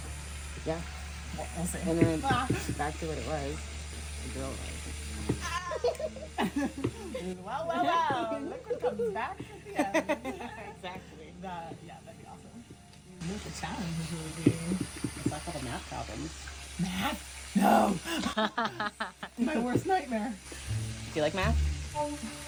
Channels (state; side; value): identical; both; correlation 1.00